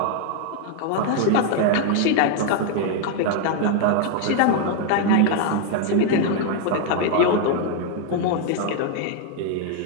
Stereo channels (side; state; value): both; different; correlation 0.01